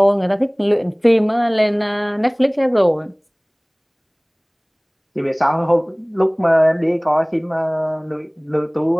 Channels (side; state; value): both; identical; correlation 1.00